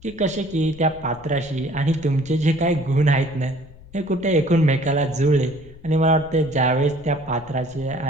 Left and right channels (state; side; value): noise; left; rumble, 20 dB below the sound